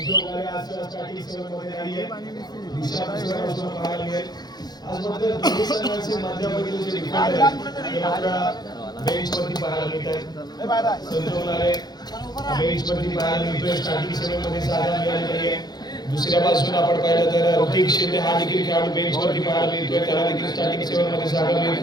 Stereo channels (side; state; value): right; late; 0.20 ms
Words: स्टार्टिंग सेवेमध्ये नाहीये. दिशा पाहायला मिळेल. आज मात्र दोन्ही संघांचे माध्यमातून जे डिफेंडर बेंचवरती पाहायला मिळत आहे. संजोगणारे बेंचवरती पाहायला मिळतोय. स्टार्टिंग सेवेमध्ये जागा मिळाली नाहीये. दुसऱ्या बाजूला आपण पाहिलं तर ऋतिक शिंदे हा देखील खेळाडू बेंचवरती पाहायला मिळतोय. त्याला देखील स्टार्टिंग सेवेमध्ये जागा मिळत